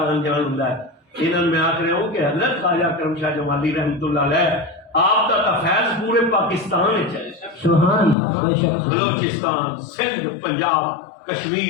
انجان ہوندا ہے, انہاں میں آکھ رہا ہوں کہ حضرت خواجہ کرم شاہ جمالی رحمۃ اللہ علیہ آپ کا فیض پورے پاکستان وچ ہے. سبحان اللہ. بے شک. بلوچستان, سندھ, پنجاب,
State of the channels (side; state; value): right; drops out; at 8.2 s